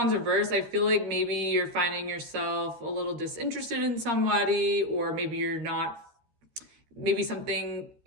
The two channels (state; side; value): late; left; 13 ms